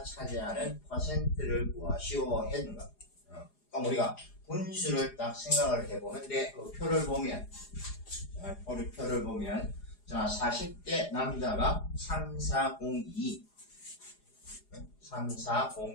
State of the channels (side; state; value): right; late; 4.9 ms